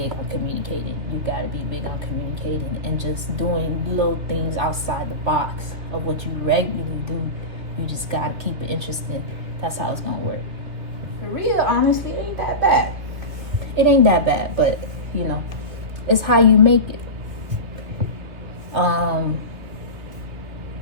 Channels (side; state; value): left; late; 2.3 ms